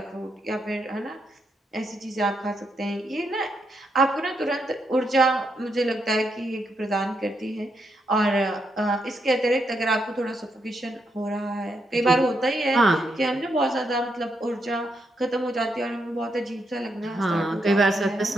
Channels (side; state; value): both; normal; correlation 0.80